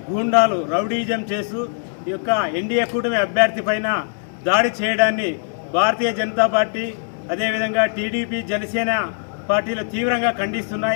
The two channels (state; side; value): silent; right; digital silence